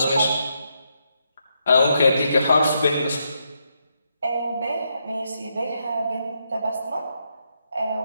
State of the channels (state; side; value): inverted; both; correlation -0.80